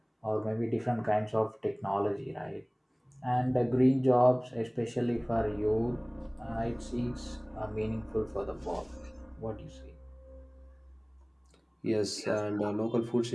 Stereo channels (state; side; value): identical; both; correlation 1.00